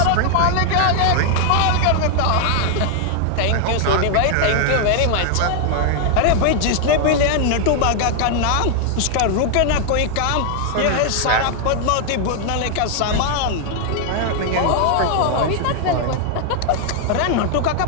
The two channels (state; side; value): different; both; correlation 0.00